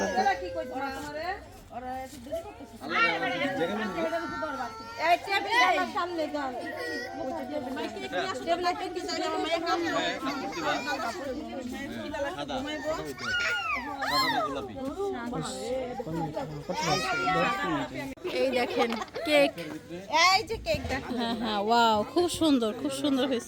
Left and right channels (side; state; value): both; identical; correlation 1.00